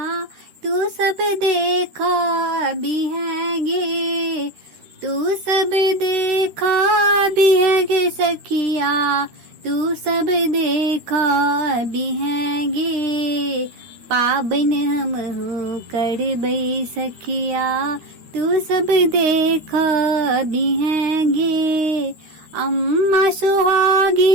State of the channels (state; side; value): late; left; 13 ms